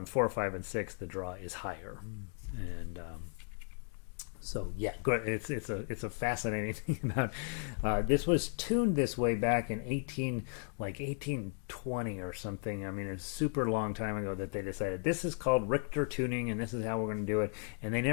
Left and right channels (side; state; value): right; silent; 54 dB below the other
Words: 4, 5, and 6 the draw is higher. And so yeah, it's a fascinating thing about this was tuned this way back in 1820 or something. I mean, it's a super long time ago that they decided this is called Richter tuning and this is how we're going to do it, and they